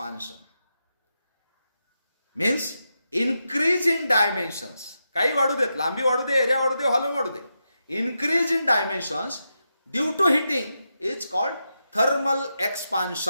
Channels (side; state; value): both; inverted; correlation -0.87